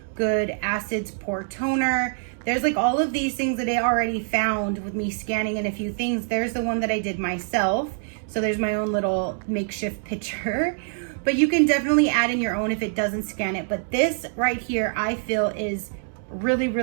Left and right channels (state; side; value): silent; left; digital silence